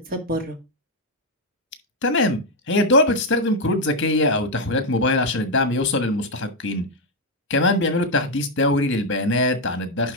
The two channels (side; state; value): both; normal; correlation 0.02